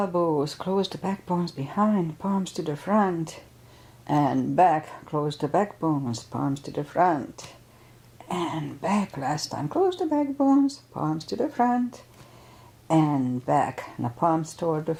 close the backbones behind, palms to the front. And back, close the backbones, palms to the front. And back, last time, close the backbones, palms to the front. And back, now palms toward the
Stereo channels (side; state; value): both; identical; correlation 1.00